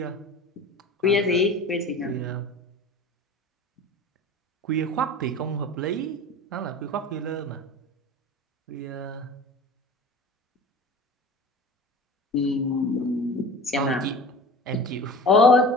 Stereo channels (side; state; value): both; normal; correlation 0.37